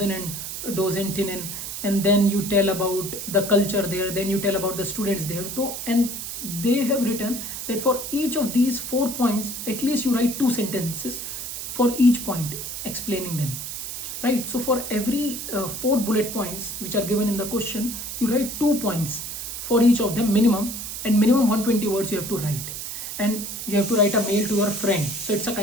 and docentinnen, and then you tell about the culture there, then you tell about the students there. So, and they have written that for each of these 4 points at least you write 2 sentences for each point explaining them, right? So for every 4 bullet points which are given in the question, you write 2 points for each of them minimum, and minimum 120 words you have to write, and you have to write a mail to your friend. So it's a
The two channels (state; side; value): noise; right; hiss, 7 dB below the sound